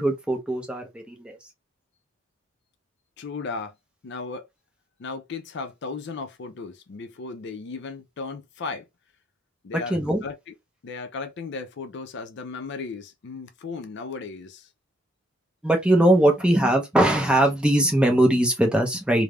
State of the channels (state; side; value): normal; both; correlation 0.74